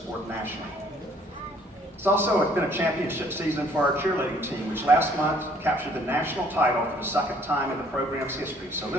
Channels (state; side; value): normal; both; correlation 0.60